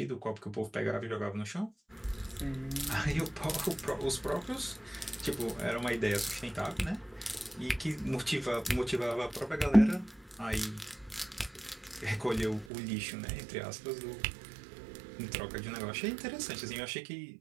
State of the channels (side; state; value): left; drops out; at 12.7 s